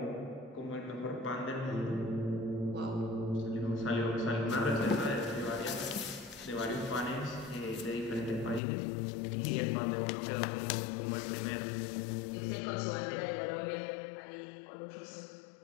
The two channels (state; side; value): drops out; right; at 8.6 s